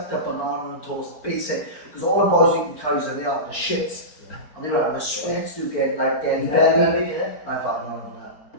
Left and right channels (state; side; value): late; right; 4.4 ms